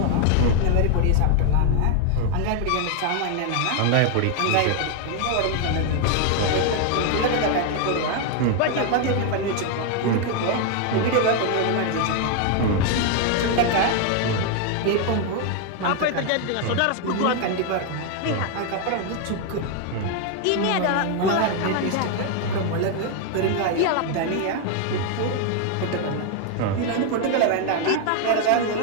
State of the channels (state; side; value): different; both; correlation 0.01